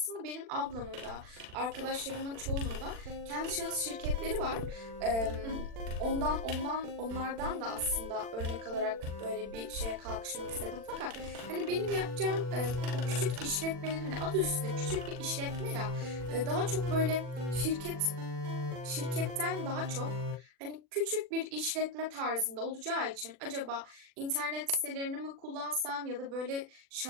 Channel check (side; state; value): left; late; 40 ms